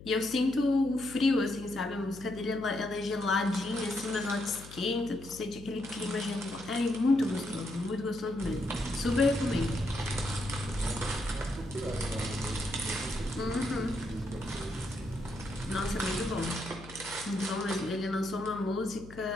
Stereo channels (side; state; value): left; noise; hum, 16 dB below the sound